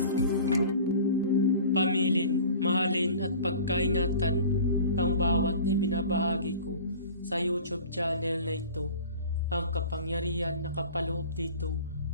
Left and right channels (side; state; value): both; inverted; correlation -0.42